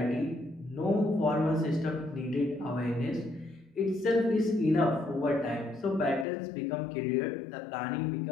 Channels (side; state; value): right; drops out; at 6.2 s